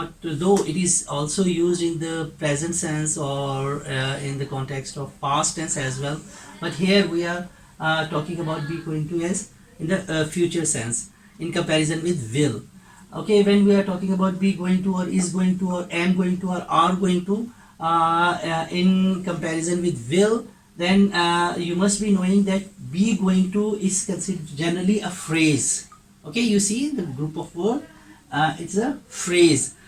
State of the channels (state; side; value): identical; both; correlation 1.00